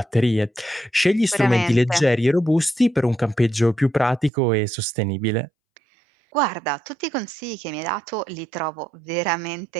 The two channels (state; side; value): drops out; left; at 4.3 s